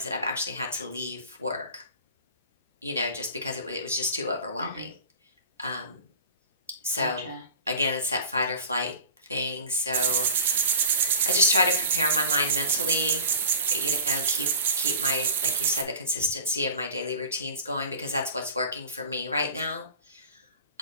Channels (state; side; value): inverted; both; correlation -0.38